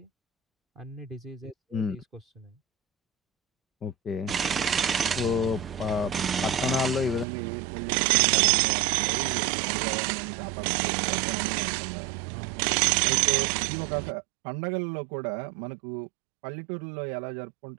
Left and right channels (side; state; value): left; drops out; at 7.2 s